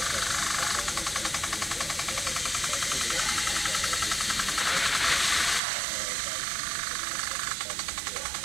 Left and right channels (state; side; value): drops out; left; at 5.6 s